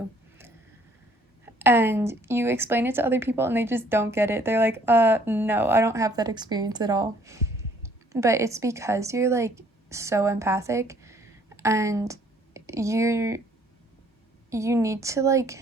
And you explain it to other people, and they just don't get it. They're like, no, I don't have that experience at all. But it's because you're like so empathic, and you need to, like,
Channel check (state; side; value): normal; both; correlation 0.61